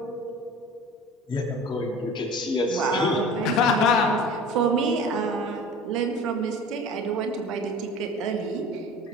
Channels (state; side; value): normal; both; correlation 0.40